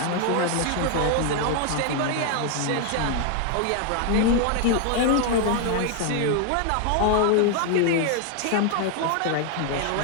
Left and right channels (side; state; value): both; different; correlation 0.00